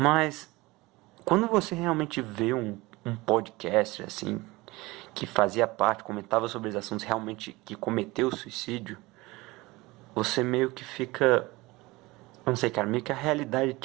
quando você realmente vê um podcast, assim, que fazia parte, comentava sobre os assuntos realmente que cometeu suicídio, você meio que fica, eu não sei, cara, meio que a realidade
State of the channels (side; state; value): left; quieter; 21.6 dB